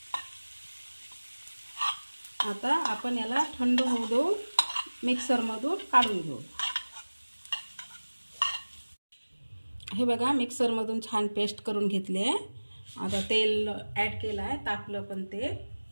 आता आपण याला थंड होऊ देऊ, मिक्सरमधून काढून घेऊ। हे बघा, मिक्सरमधून छान पेस्ट करून घेतले। आता तेल ॲड केलं आहे, तापलं पण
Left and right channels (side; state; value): both; inverted; correlation -1.00